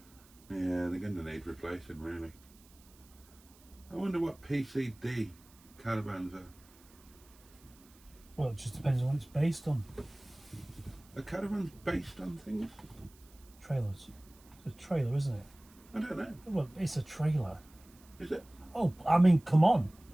they? Yeah, they're going to need replacing, really. I wonder what PCD caravans are. Well, it just depends on what it's based on. Are caravans based on things? Trailers. It's a trailer, isn't it? I don't know. Well, it's a trailer. Is it? Oh, I mean, come on.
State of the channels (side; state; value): right; noise; hiss, 26 dB below the sound